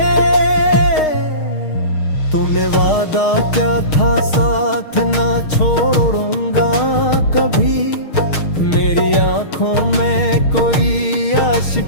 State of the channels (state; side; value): late; right; 6.5 ms